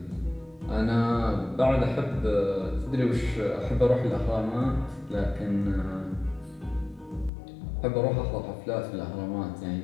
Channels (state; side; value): drops out; right; at 7.3 s